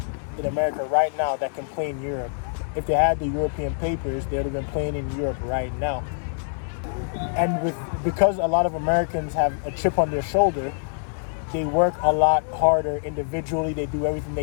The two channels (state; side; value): silent; right; digital silence